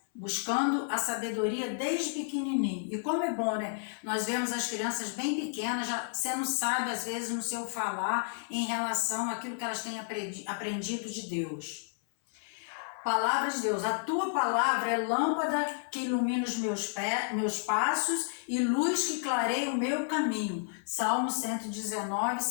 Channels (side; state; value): right; silent; 57 dB below the other